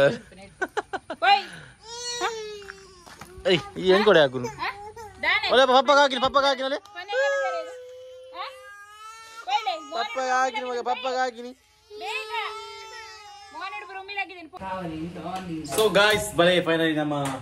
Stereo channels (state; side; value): identical; both; correlation 1.00